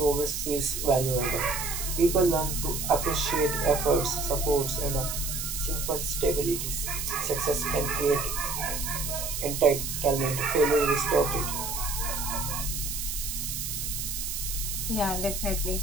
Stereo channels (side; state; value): right; noise; hiss, 4 dB below the sound